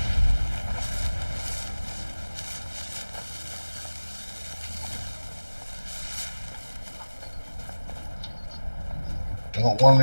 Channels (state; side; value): inverted; both; correlation -1.00